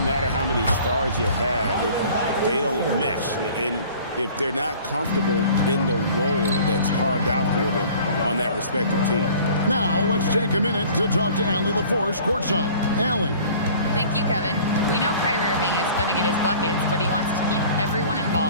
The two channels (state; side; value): inverted; both; correlation -0.48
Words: matter how many stars you have if they don't mesh. And if they're not comfortable in the role that's carved out for them on that respective team. Now, let's take a minute to talk to Allie LaForce courtside. Allie. Thank you, Kevin. We know Kyrie Irving is going to get his buckets, but he wants to keep everyone